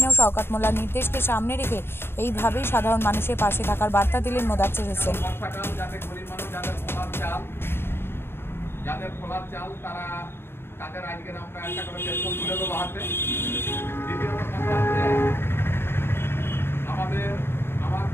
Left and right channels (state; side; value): late; right; 0.11 ms